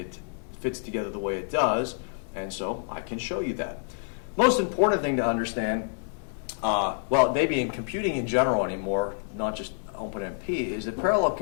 fits together the way it does, and so I can show you that. Most important thing to understand, well, maybe in computing in general anymore, not just OpenMP, is that parallel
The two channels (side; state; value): right; silent; 60 dB below the other